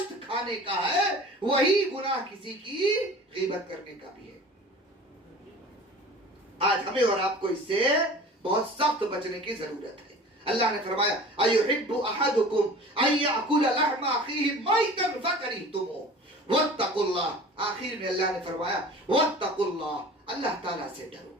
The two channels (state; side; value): normal; both; correlation 0.42